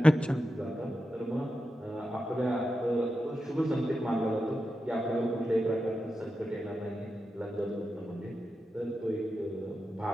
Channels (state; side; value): normal; both; correlation 0.90